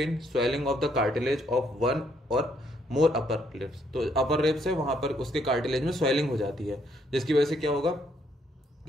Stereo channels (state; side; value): normal; both; correlation 0.70